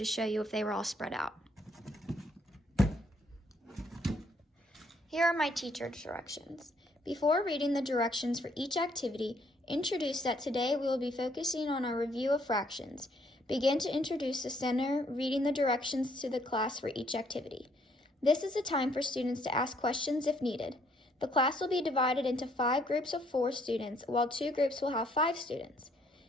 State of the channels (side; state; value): both; normal; correlation 0.67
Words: show you if they were all spread out. Here are my teacher directions. Before reading the directions for each activity, introduce that today we will be focusing on our review of fractions. Begin to introduce the center, reading the directions to the class for each activity. This is the time for students to ask questions if needed. The class will be divided into 5 groups of 4 students, while 2 groups will have 5 students.